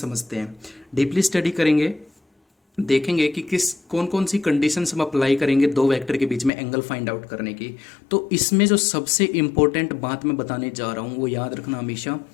हैं, डीपली स्टडी करेंगे। देखेंगे कि किस कौन कौन सी कंडीशंस हम अप्लाई करेंगे दो वेक्टर के बीच में एंगल फाइंड आउट करने की। तो इसमें जो सबसे इंपॉर्टेंट बात मैं बताने जा रहा हूँ वो याद रखना हमेशा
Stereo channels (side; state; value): right; drops out; at 6.5 s